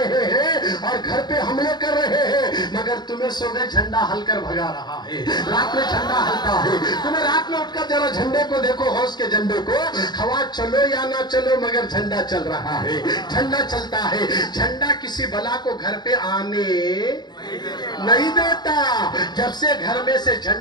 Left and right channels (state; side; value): late; right; 0.21 ms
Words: ہیں اور گھر پہ حملے کر رہے ہیں, مگر تمہیں صبح جھنڈا ہل کر بھگا رہا ہے. رات میں جھنڈا ہلتا ہے. تمہیں رات میں اٹھ کر ذرا جھنڈے کو دیکھو, غوث کے جھنڈے کو. ہوا چلو یا نہ چلو مگر جھنڈا چل رہا ہے, جھنڈا چلتا ہے. جھنڈا کسی بلا کو گھر پہ آنے نہیں دیتا. جب سے گھر میں سے